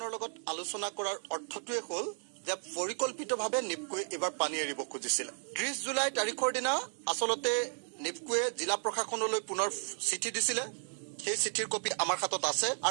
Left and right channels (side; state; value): left; silent; 55 dB below the other